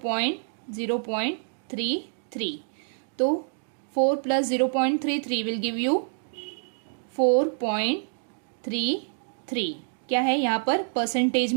तो 4 प्लस 0.33 विल गिव यू 4.33। क्या है यहाँ पर परसेंटेज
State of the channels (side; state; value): left; silent; digital silence